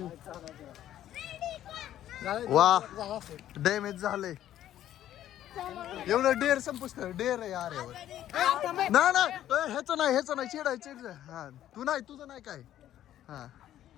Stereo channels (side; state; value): right; quieter; 12.1 dB